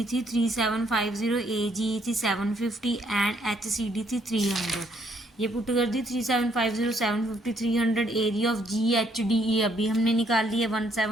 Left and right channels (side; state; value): both; normal; correlation 0.69